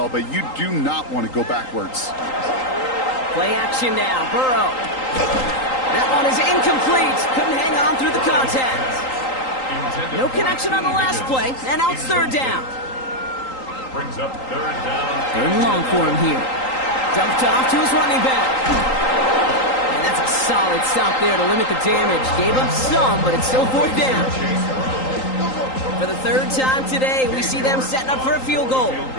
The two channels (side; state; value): right; late; 3.8 ms